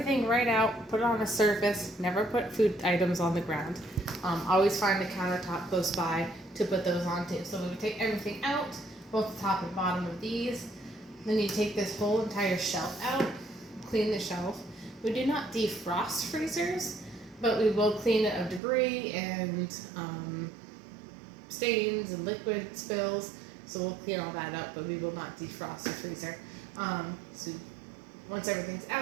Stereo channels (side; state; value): left; drops out; at 18.6 s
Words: right out, put it on a surface, never put food items on the ground. Always find a countertop close by to put those onto. So we would take everything out, both the top and bottom of these. Then you take this whole entire shelf out, clean the shelf. We do not defrost freezers, but we will clean it of debris and stains and liquid spills. So we'll clean all that up, but we will not defrost the freezer. So once everything's